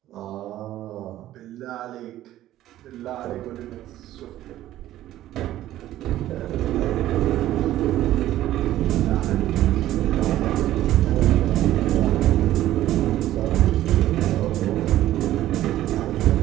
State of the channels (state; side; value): quieter; left; 13.8 dB